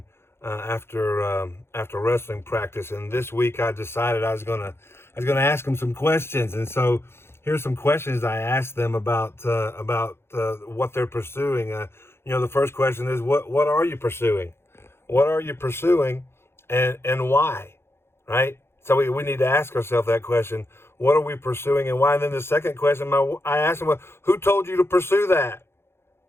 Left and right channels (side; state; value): right; late; 0.12 ms